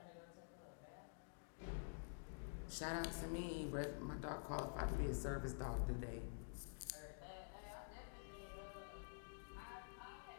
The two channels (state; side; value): silent; right; digital silence